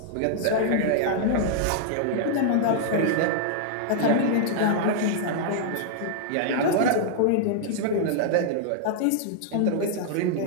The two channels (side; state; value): both; different; correlation -0.01